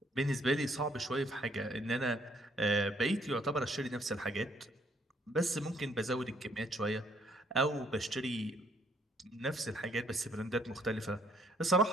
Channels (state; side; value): normal; both; correlation 0.66